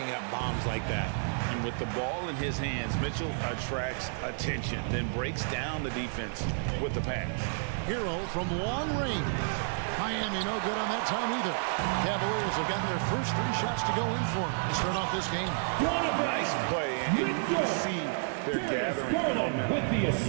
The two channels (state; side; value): silent; left; digital silence